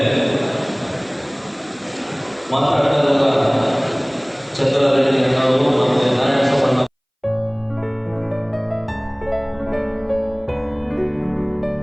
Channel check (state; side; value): identical; both; correlation 1.00